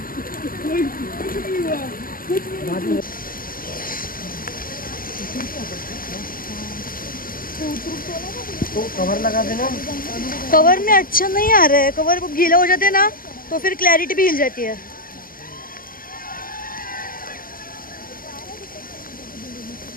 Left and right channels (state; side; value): late; right; 0.41 ms